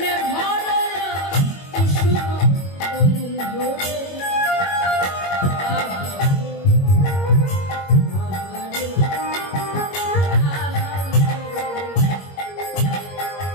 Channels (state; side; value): late; right; 21 ms